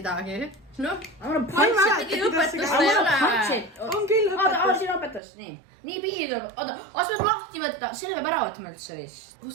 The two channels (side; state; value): left; drops out; at 5.2 s